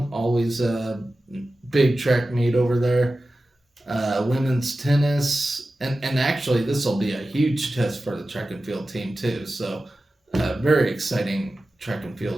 Always a big track meet over there. Women's tennis, and actually this will be a huge test for the track and field team too. So very exciting track and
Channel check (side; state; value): both; normal; correlation 0.94